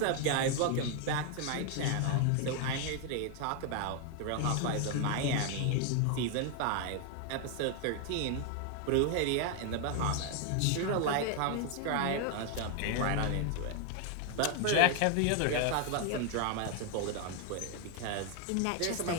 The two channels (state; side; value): different; both; correlation 0.01